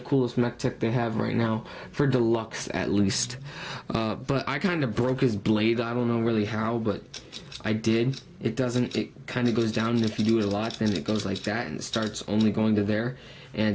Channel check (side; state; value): both; identical; correlation 1.00